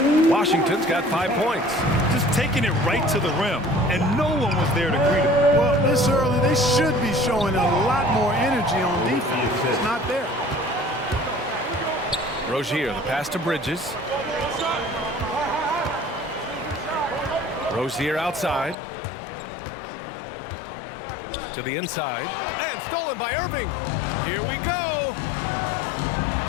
Washington's got 5 points. Just taking it right to the rim, and no one was there to greet him. Well, this early, they should be showing a lot more energy on defense. It's not there. Rozier, the pass to Bridges. Rozier outside. To the inside. And stolen by Irving. Here we go.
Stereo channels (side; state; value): right; drops out; at 18.8 s